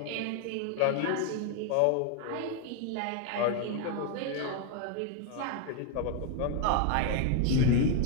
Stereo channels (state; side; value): different; both; correlation 0.00